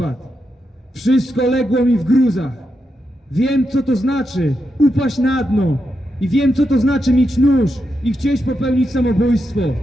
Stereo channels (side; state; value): both; normal; correlation 0.85